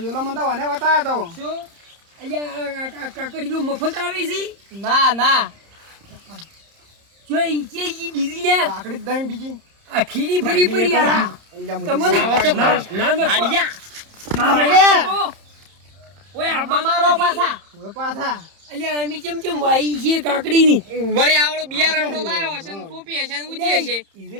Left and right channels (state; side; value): late; left; 30 ms